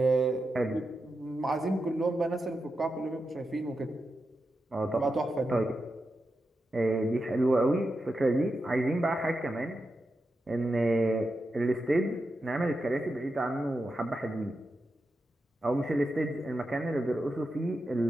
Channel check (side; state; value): both; normal; correlation 0.88